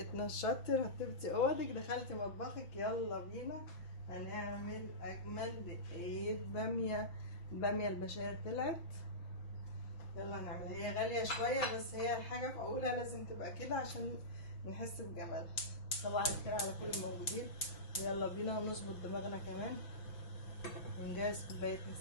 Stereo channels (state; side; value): late; right; 6.1 ms